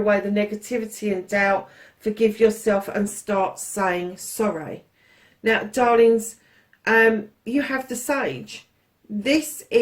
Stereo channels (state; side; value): identical; both; correlation 1.00